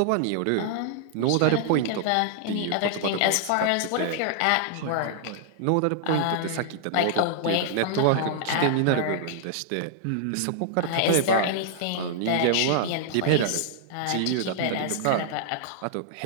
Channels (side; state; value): both; different; correlation -0.01